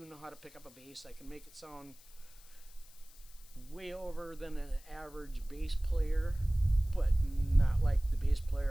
know how to pick up a bass. I can make it sound way over than an average bass player, but not like the bass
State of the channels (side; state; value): left; noise; hiss, 23 dB below the sound